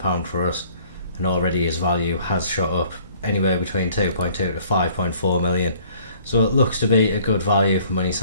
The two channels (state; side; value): inverted; both; correlation -0.57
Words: for us, and already his value has shot up anywhere between 2.2 to 5.4 million. So it looks to be a good value for money